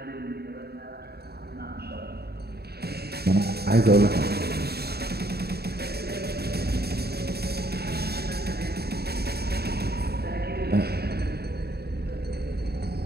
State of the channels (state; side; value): late; left; 0.47 ms